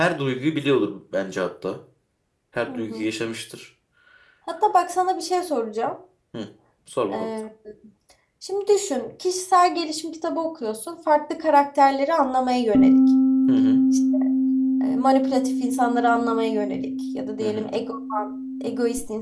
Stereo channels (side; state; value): both; identical; correlation 1.00